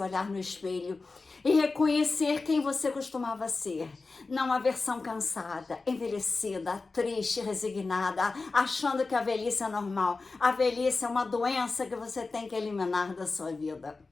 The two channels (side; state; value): right; quieter; 3.9 dB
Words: olhar no espelho e reconhecer quem você costumava ser. Não a versão cansada, envelhecida, triste, resignada, achando que a velhice é normal. A velhice é uma doença que você tem que eliminar da sua vida.